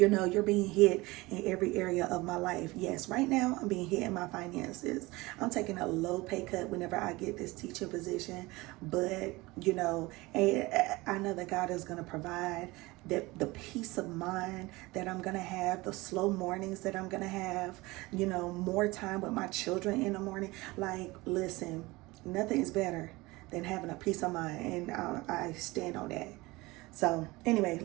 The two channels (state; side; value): quieter; left; 21.7 dB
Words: know, you're being hit in every area of my life. Yes, right now I'm being hit in my finances. I'm taking a low pay cut whenever I get this teaching position, but you know, I know that God is going to provide that, the peace of mind that I'm going to have, the slow mornings that I'm going to have, you know, more time with my children in the morning. Like, listen, nothing is better than having a peace of mind, and I stand on that. So anyway,